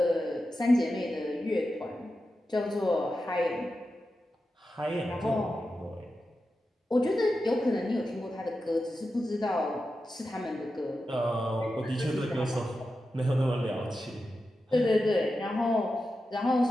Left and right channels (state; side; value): normal; both; correlation 0.91